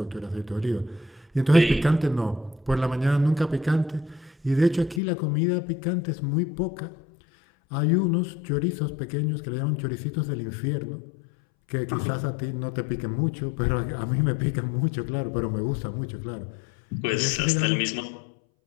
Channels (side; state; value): right; drops out; at 5.0 s